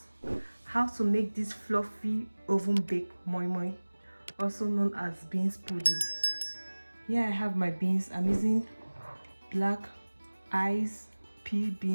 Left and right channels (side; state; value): both; inverted; correlation -1.00